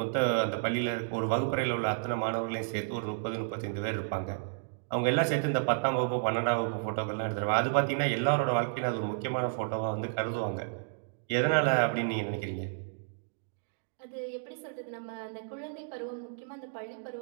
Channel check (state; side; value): silent; left; digital silence